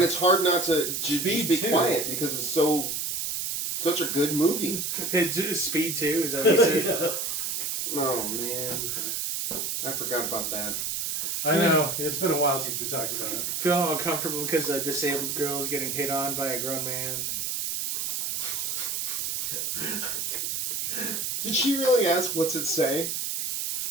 it's hard not to just be too. quiet because it's such a good movie. Speed 2, is that what you said? Yeah. Oh man. I forgot about that. I know. It's been a while since we talked about it. Feeling uncomfortable because a disabled girl is getting hit on by a grown man. Did she really ask what's it say?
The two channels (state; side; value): noise; right; hiss, 2 dB below the sound